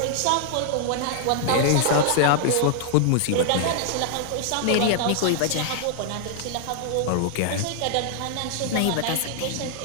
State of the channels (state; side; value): different; both; correlation 0.00